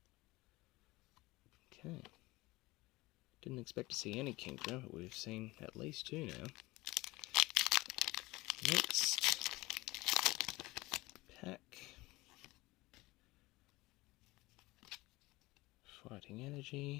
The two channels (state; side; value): quieter; right; 20.8 dB